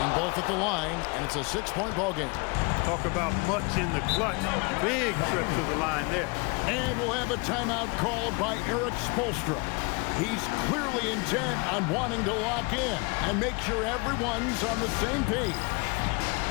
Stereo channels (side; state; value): right; quieter; 29.4 dB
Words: both at the line, and it's a 6-point ball game. Talk about much in the clutch. Big trip to the line there. And we'll have a timeout called by Erik Spoelstra. He's clearly intent on wanting to lock in and make sure everyone's on the same page.